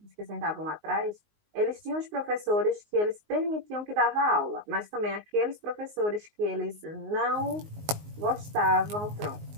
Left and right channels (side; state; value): left; late; 19 ms